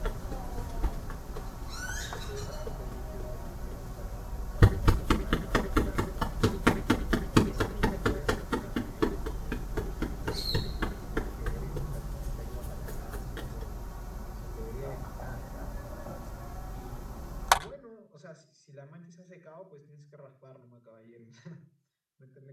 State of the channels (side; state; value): both; identical; correlation 1.00